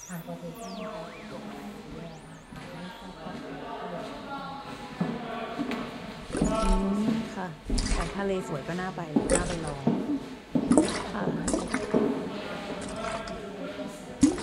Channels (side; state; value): both; identical; correlation 1.00